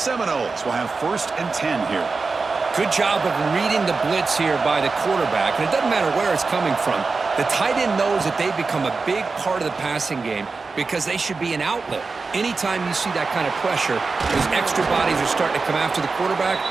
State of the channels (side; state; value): left; quieter; 4.2 dB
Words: will have 1st and 10 here. Good job of reading the blitz here by the quarterback, and it doesn't matter where it's coming from. The tight end knows that they become a big part of the passing game because they should be an outlet. Anytime you see that kind of pressure, those extra bodies are starting to come after the quarterback.